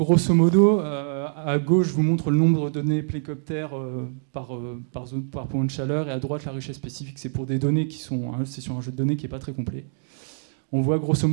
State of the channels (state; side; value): silent; left; digital silence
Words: modo, à gauche, je vous montre le nombre de données plécoptères par point de chaleur, et à droite, la richesse spécifique. C'est pour des données qui sont... c'est sur un jeu de données qui n'est pas très complet. On voit grosso